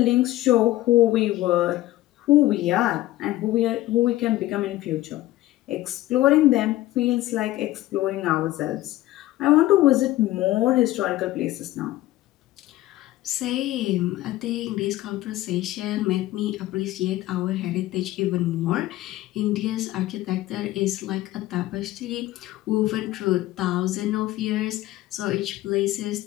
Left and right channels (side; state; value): right; quieter; 16.1 dB